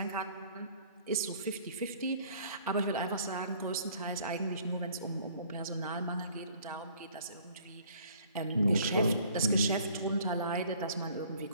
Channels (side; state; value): both; inverted; correlation -0.55